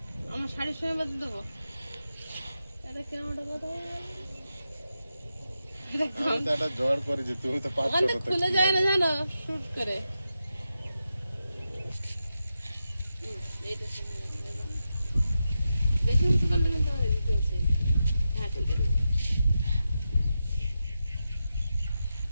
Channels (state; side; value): inverted; both; correlation -0.89